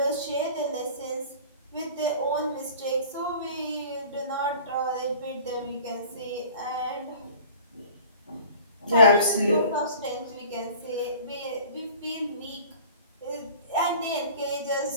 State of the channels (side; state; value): both; inverted; correlation -0.45